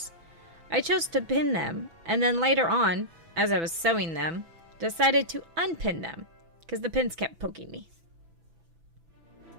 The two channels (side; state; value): left; late; 6.0 ms